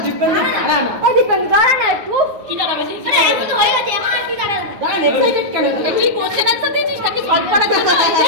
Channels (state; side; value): late; left; 9.3 ms